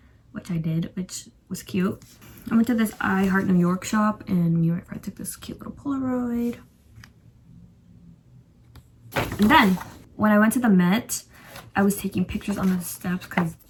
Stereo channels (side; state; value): both; identical; correlation 1.00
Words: which I did, which was cute. I went to this I Heart New York shop and me and my friend took this cute little Polaroid. And then when I went to the Met, I was taking pictures on the steps because